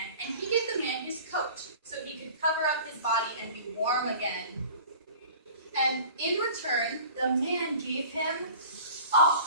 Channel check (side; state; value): both; inverted; correlation -0.44